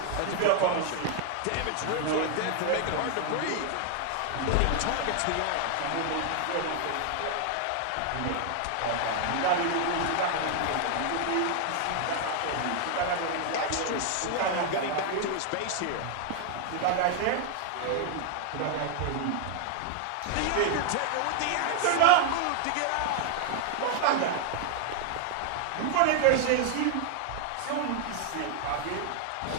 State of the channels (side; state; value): both; different; correlation 0.00